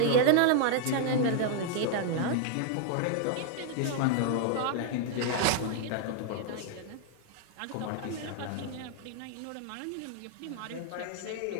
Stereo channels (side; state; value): both; different; correlation 0.00